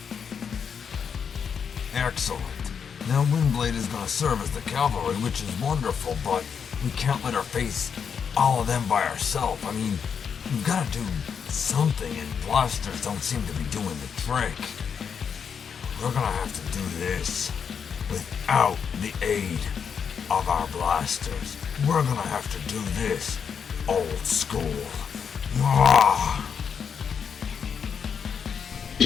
Excellent. Now Windblade is going to serve as the cavalry, which is wonderful, but we can't let her face all of them by ourselves. I mean, we've got to do something, and blasters don't seem to be doing the trick. We're going to have to do this without the aid of our blasters. We're going to have to do this old school. Ah.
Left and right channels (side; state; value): right; quieter; 6.9 dB